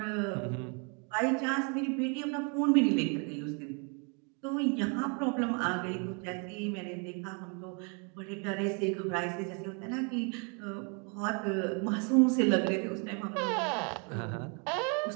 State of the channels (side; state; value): left; quieter; 36.0 dB